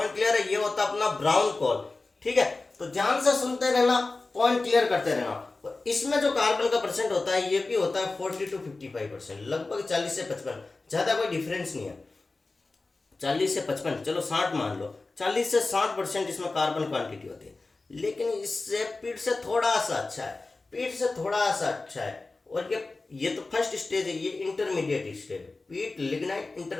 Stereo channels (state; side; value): quieter; right; 3.5 dB